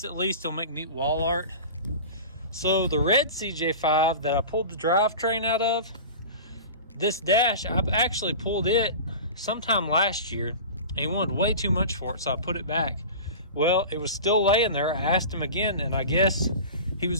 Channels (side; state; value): both; inverted; correlation -0.34